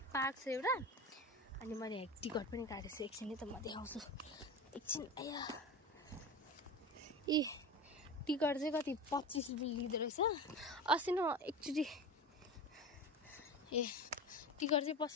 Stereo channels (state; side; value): normal; both; correlation 0.28